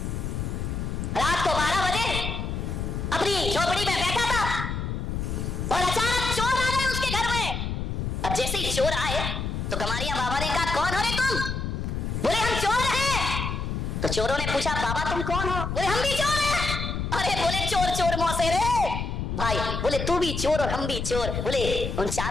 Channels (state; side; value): noise; left; rumble, 3 dB below the sound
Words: रात को 12 बजे अपनी झोपड़ी में बैठा था और अचानक चोर आ गए उसके घर में। अब जैसे ही चोर आए तो गमारिया बाबा ने कहा कौन हो रे तुम? बोले हम चोर हैं। तो चोरों ने पूछा बाबा तुम कौन हो? बोले हम भी चोर हैं। अरे बोले चोर चोर मौसे रे भाई, बोले तू भी चोर और हम भी चोर। बोले उन